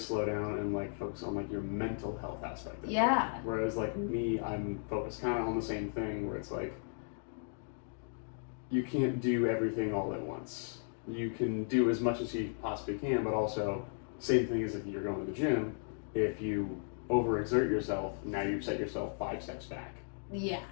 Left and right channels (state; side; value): silent; right; digital silence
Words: down and focus on your mental health aspect of it. Yeah. Whereas me, I'm focused kind of on the same thing where it's you can't do everything all at once. You can do as much as you possibly can, but also same thing as if you're going to the gym. If you overexert yourself, now you've set yourself 5 steps back. Yeah,